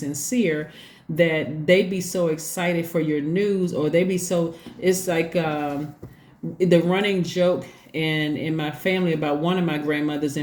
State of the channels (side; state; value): both; identical; correlation 1.00